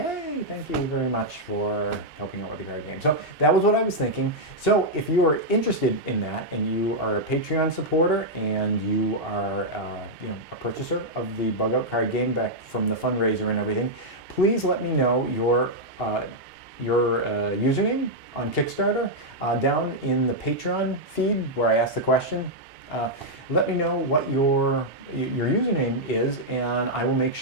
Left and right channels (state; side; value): normal; both; correlation -0.04